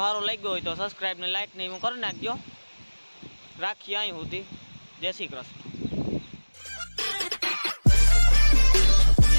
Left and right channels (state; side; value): inverted; both; correlation -1.00